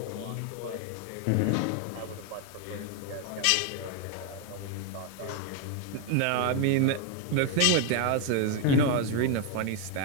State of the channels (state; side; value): different; both; correlation 0.01